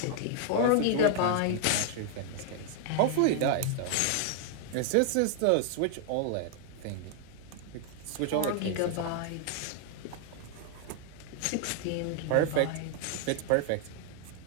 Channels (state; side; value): different; both; correlation 0.00